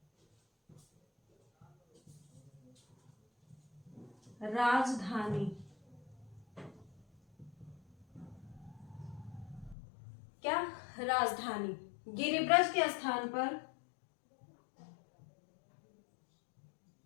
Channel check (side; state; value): right; drops out; at 9.8 s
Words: क्या, राजधानी गिरिब्रज के स्थान पर